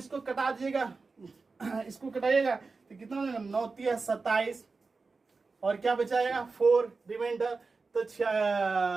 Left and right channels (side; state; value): left; quieter; 4.2 dB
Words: कटा दीजिएगा, इसको कटाइएगा तो कितना हो जाएगा, 9 3 27, और क्या बचाएगा 4 रिमाइंडर। तो